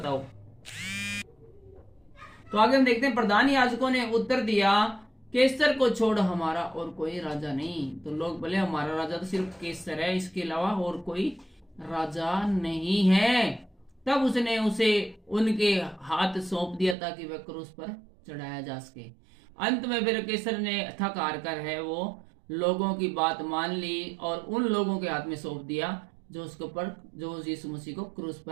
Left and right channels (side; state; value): left; drops out; at 16.9 s